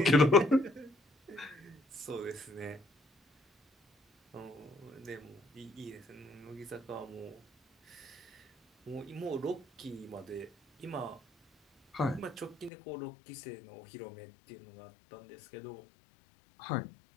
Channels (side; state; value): right; drops out; at 12.7 s